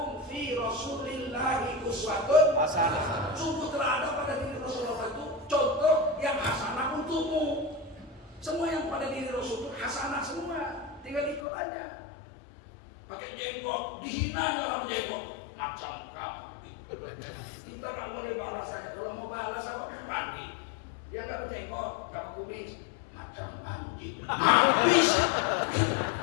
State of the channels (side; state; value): right; drops out; at 11.4 s